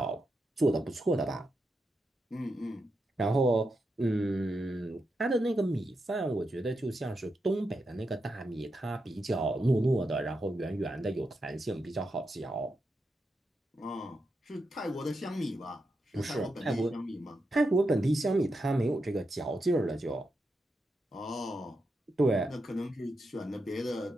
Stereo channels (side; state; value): both; normal; correlation 0.86